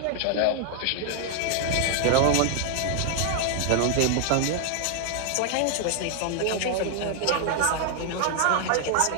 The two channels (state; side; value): different; both; correlation 0.00